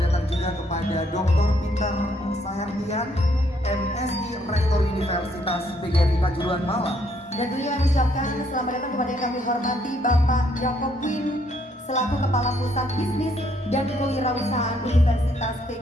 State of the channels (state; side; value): normal; both; correlation 0.69